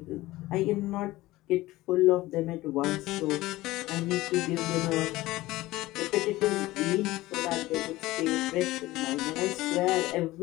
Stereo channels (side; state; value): right; quieter; 18.0 dB